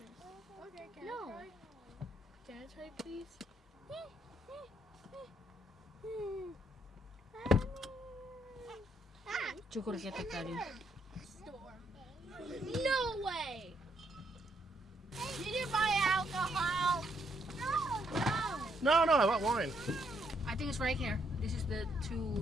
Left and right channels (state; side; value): normal; both; correlation 0.74